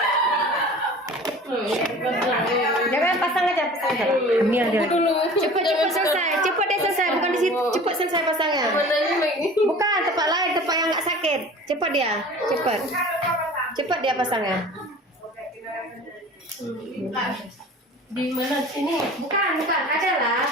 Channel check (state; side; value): normal; both; correlation 0.42